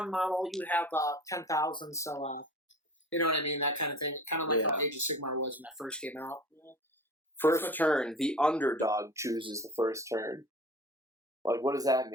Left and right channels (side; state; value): both; normal; correlation 0.39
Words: model. You have 10,000. So you know what I mean? That kind of thing. Kind of like how Age of Sigmar was when that first came out. First turn, the underdog chooses the first turn. Like, what does that